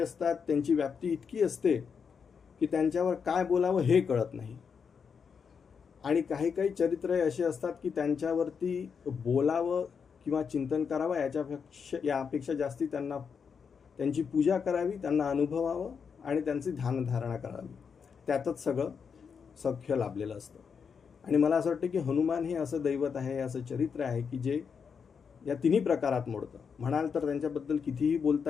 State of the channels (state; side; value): quieter; right; 6.3 dB